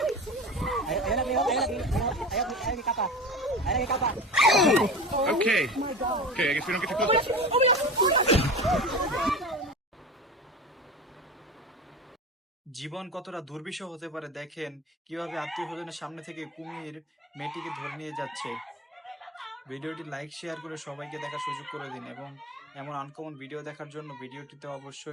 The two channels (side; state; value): both; normal; correlation 0.30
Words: Ayo, ayo lagi, ayo lagi, ayo lagi kapal. Ayo lagi kapal. Okay. Okay, I guess we don't get to close. জীবন কতটা দুর্বিষহ হতে পারে দেখেন কিভাবে আত্মীয় স্বজনের সামনে থেকে কুমির মেয়েটিকে ধরে নিয়ে যাচ্ছে। ভিডিওটি লাইক শেয়ার করে সবাইকে দেখার সুযোগ করে দিন এবং এমন আনকমন ভিডিও দেখার জন্য ভিডিওটিতে